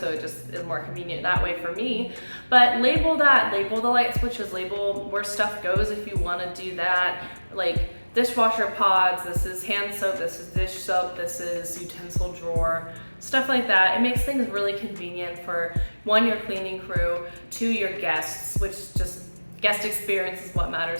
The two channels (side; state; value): both; inverted; correlation -1.00